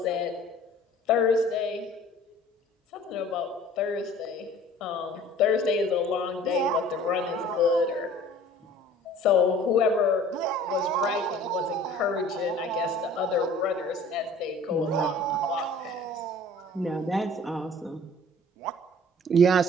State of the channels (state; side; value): normal; both; correlation 0.48